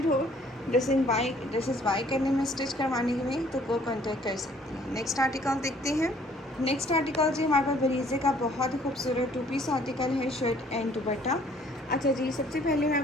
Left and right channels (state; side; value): normal; both; correlation 0.59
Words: हो ड्रेसेस बाय करने में, स्टिच करवाने में, तो वो कॉन्टेक्ट कर सकती हैं। नेक्स्ट आर्टिकल देखते हैं। नेक्स्ट आर्टिकल जी हमारे पास बरीज़े का बहुत ही खूबसूरत 2 पीस आर्टिकल है, शर्ट एंड दुपट्टा। अच्छा जी, सबसे पहले मैं